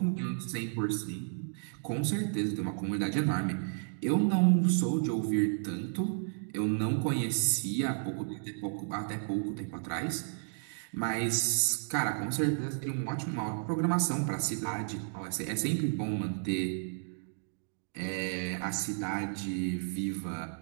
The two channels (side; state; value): left; silent; digital silence